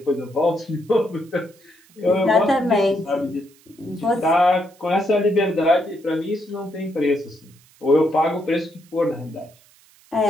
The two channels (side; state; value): right; noise; hiss, 29 dB below the sound